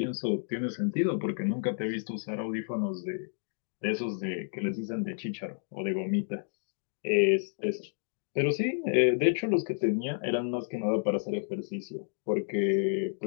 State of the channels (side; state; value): right; silent; digital silence